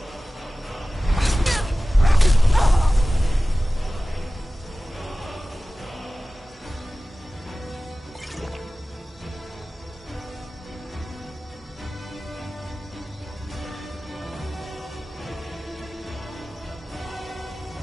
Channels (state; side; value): normal; both; correlation 0.96